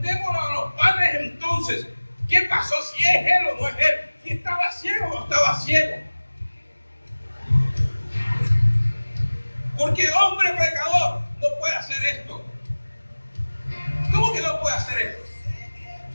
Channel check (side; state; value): both; inverted; correlation -1.00